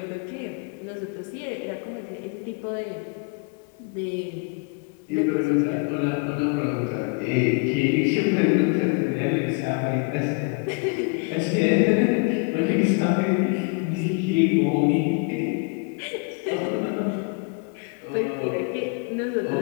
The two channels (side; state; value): right; quieter; 32.8 dB